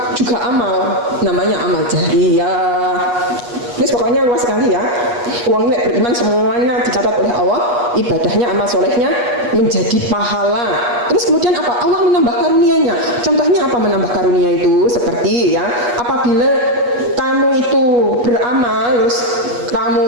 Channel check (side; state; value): left; late; 8.3 ms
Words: juga amal, namanya amal jariyah. Terus pokoknya luas sekali ya. Uang beriman semuanya dicatat oleh Allah, ibadahnya, amal solehnya menjadi pahala. Terus kemudian apa? Allah menambah karunia-Nya. Contohnya apa menambah karunia itu? Seperti ya, apabila kamu itu beramal, terus